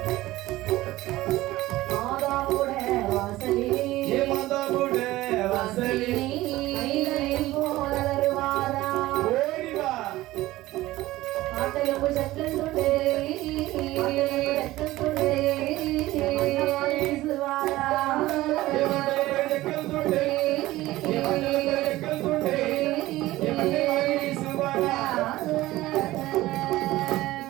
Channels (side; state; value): left; quieter; 17.2 dB